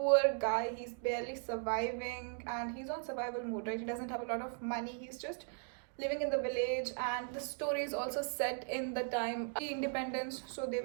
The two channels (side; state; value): left; silent; 53 dB below the other